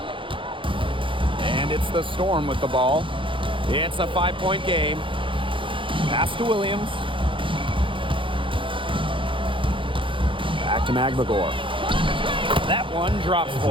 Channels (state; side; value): late; left; 0.25 ms